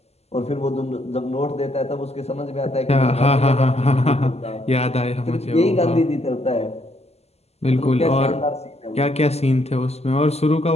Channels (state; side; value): late; right; 0.30 ms